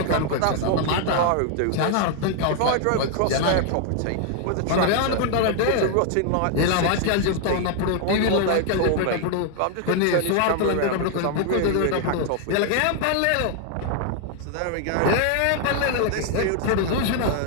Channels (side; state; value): both; different; correlation 0.00